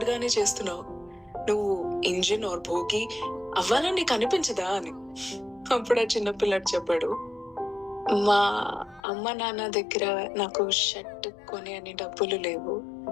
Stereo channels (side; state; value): right; drops out; at 9.0 s